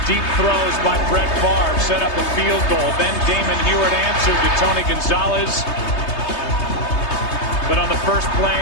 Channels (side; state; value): right; late; 3.3 ms